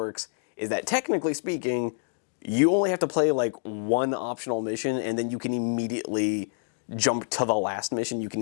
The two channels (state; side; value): silent; right; digital silence